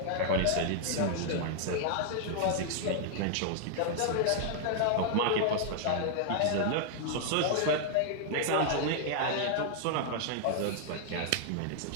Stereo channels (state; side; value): different; both; correlation 0.00